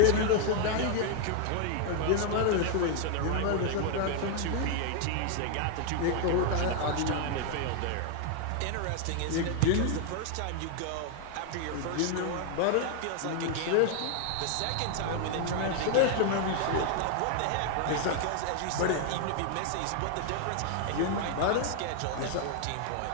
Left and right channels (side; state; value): both; different; correlation 0.00